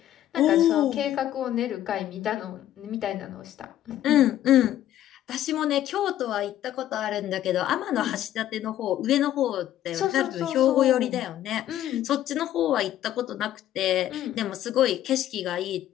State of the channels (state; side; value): quieter; right; 12.4 dB